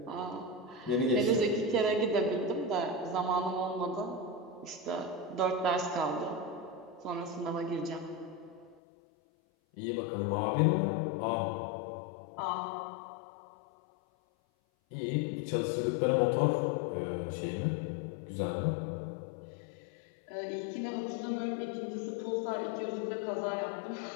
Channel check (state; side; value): drops out; right; at 8.8 s